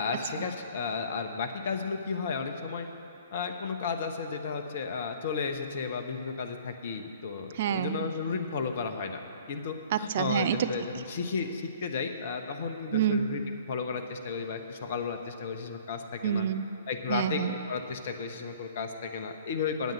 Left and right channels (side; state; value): both; inverted; correlation -0.49